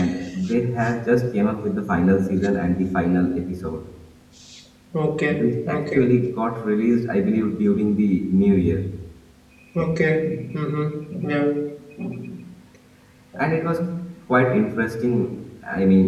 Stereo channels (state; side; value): identical; both; correlation 1.00